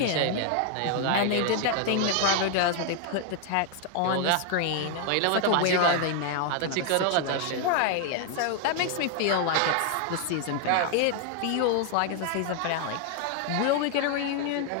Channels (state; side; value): different; both; correlation 0.00